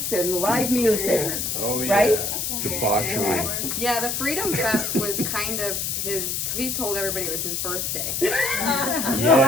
and live music. Oh, yeah. Right? Debauchery. Yeah, the Freedom Fest was kind of his. He told everybody it was his birthday. Well,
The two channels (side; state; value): left; noise; hiss, 1 dB below the sound